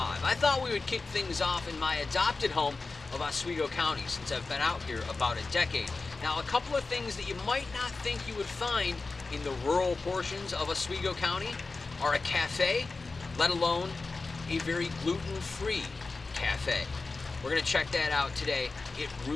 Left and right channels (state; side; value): quieter; right; 3.8 dB